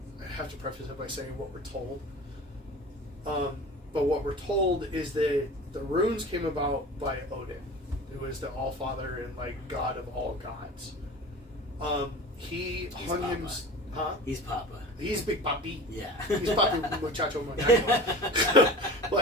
have to preface it by saying what we're told. But what we're told is that the runes came about by Odin, who is the Allfather and like god of all gods. He hung him. Huh? He's Papa. He's Big Papi. Yeah. He's Papi Muchacho Muchacho.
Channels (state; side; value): normal; both; correlation 0.37